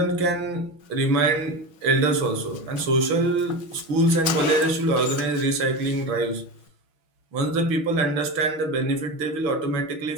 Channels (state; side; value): late; left; 6.2 ms